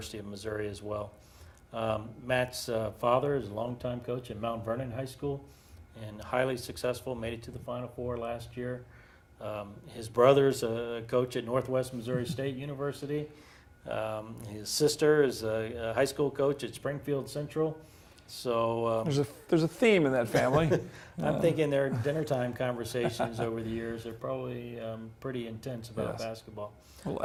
of Missouri as well. Matt's father is a longtime coach at Mount Vernon High School and highly successful, made it to the Final Four last year. His brother's a coach at Northwest Missouri State University. His sister is a high school coach at Springfield Central. So there's a theme in that family. I'm thinking their dinner time conversations over the years are probably pretty intense about basketball. Little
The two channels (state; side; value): identical; both; correlation 1.00